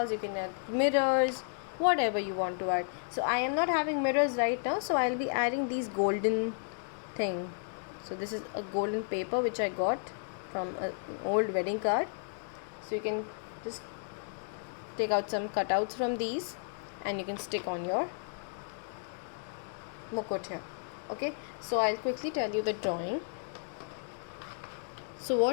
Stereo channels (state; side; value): silent; right; digital silence